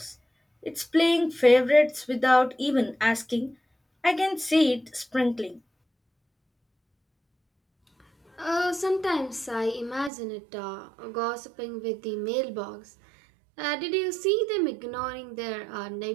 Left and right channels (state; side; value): drops out; left; at 10.1 s